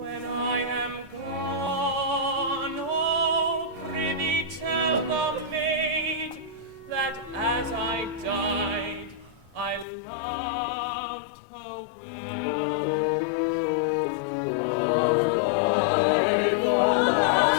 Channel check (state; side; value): drops out; right; at 9.9 s